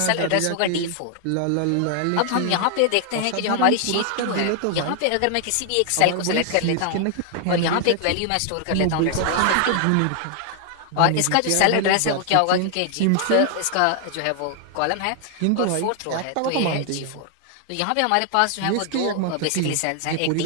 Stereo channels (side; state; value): both; different; correlation 0.00